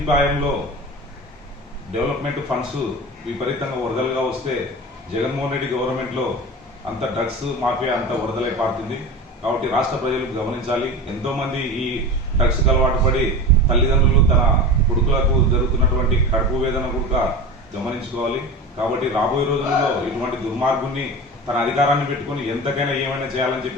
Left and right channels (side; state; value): both; normal; correlation 0.30